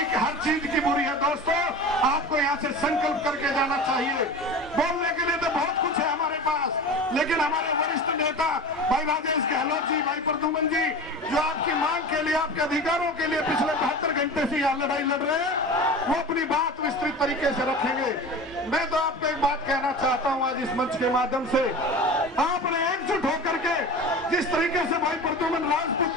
हर चीज की बुरी है दोस्तों, आपको यहाँ से संकल्प करके जाना चाहिए। बोलने के लिए तो बहुत कुछ है हमारे पास, लेकिन हमारे वरिष्ठ नेता भाई राजेश गहलोत जी, भाई प्रद्युमन जी, जो आपकी मांग के लिए, आपके अधिकारों के लिए पिछले 72 घंटे से यहाँ लड़ाई लड़ रहे हैं, वो अपनी बात विस्तृत तरीके से रखेंगे। मैं तो आपको एक बात कहना चाहता हूं आज इस मंच के माध्यम से, आपने एकजुट होकर के जिस तरीके से भाई प्रद्युमन राजपूत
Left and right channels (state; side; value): normal; both; correlation 0.32